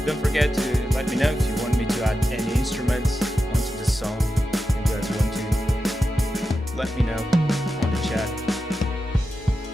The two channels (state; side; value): normal; both; correlation 0.90